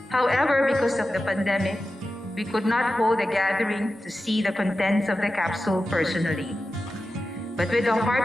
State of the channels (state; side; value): normal; both; correlation 0.92